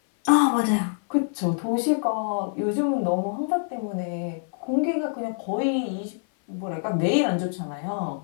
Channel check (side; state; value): right; silent; 57 dB below the other